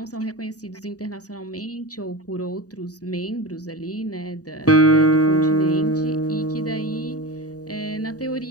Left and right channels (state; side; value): late; right; 0.67 ms